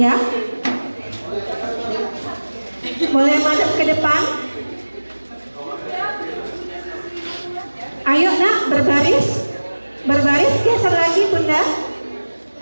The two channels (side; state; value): both; inverted; correlation -1.00